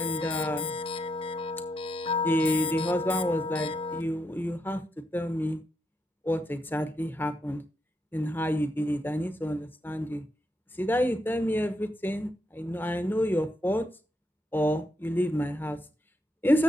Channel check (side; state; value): both; normal; correlation 0.81